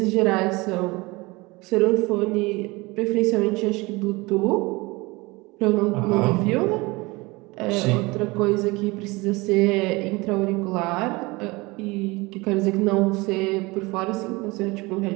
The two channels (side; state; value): left; quieter; 23.6 dB